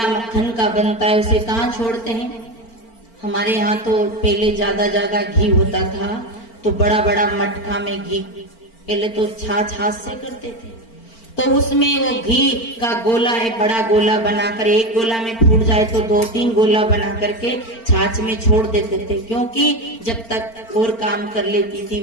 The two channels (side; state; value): right; late; 4.4 ms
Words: मक्खन का बनता है उसे कहाँ छोड़ते हैं? हमारे यहाँ तो पहले ज्यादा घी होता था, तो बड़ा बड़ा मटका में घी, पहले तो छाछ हाथ से करते थे, तो उसमें वो घी का गोला है, बड़ा गोला बनाकर, एक गोला में फूट जाए तो 2-3 गोला बना करके छाछ में छोड़ देते थे। क्योंकि जब तक और काम कर लेती थी